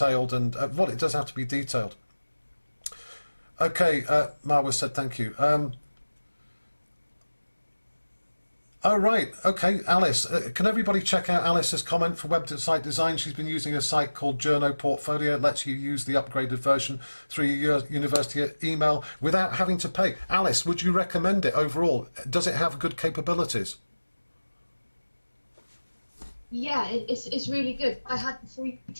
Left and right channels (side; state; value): both; inverted; correlation -1.00